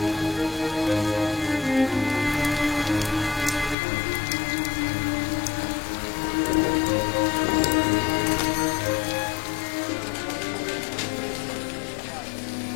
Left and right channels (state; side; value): drops out; right; at 3.8 s